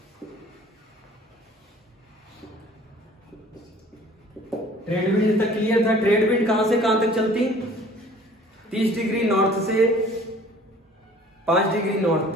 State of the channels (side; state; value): both; normal; correlation 0.51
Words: ट्रेड विंड तक क्लियर था। ट्रेड विंड कहां से कहां तक चलती? 30 डिग्री नॉर्थ से 5 डिग्री नॉर्थ